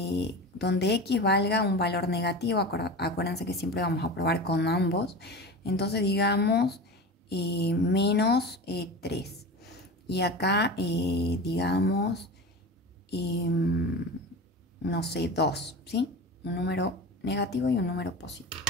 x valga un valor negativo. Acuérdense que siempre vamos a probar con ambos. Entonces digamos menos 3. Y acá digamos, no sé, 2, ¿sí? Un número negativo y un número positivo.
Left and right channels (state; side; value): normal; both; correlation 0.30